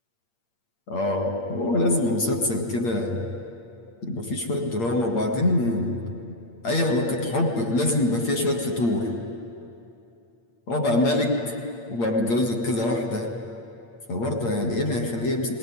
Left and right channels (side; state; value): right; late; 8.6 ms